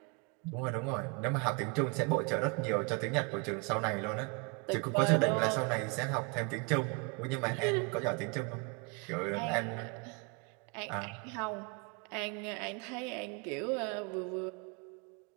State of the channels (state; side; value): quieter; left; 31.4 dB